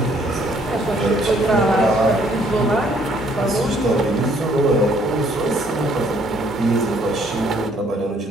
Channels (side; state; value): both; normal; correlation 0.64